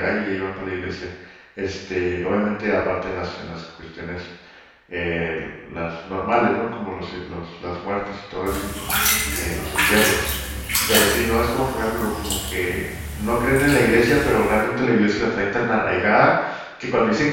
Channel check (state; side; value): identical; both; correlation 1.00